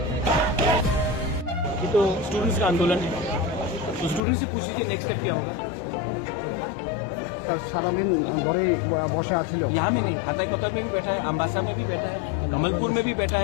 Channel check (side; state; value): right; drops out; at 4.2 s